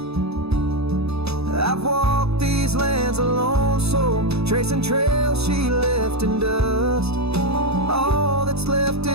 I've walked these lands alone, so tracing trails she left in dust. All that's left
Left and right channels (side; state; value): left; late; 0.79 ms